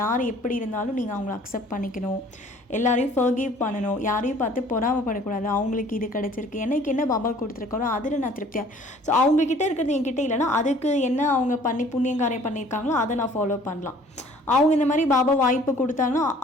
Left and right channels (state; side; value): normal; both; correlation 0.53